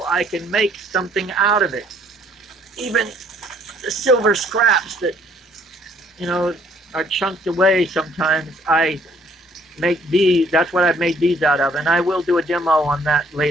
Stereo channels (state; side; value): normal; both; correlation 0.63